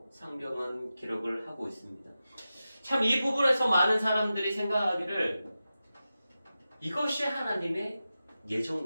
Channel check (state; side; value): inverted; both; correlation -0.93